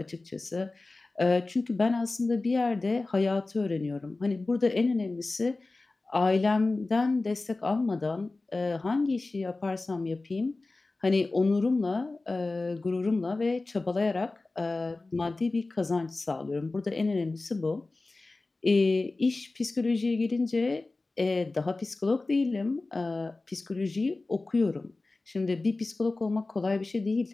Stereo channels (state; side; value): quieter; right; 3.3 dB